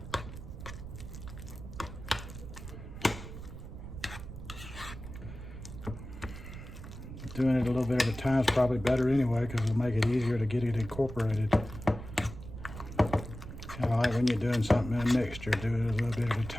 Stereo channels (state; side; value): noise; right; rumble, 11 dB below the sound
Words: Doing it a little bit at a time is probably better anyway, because it'll make it easier to get it incorporated. Kind of like when you're doing something in a mixture, do it a little bit at a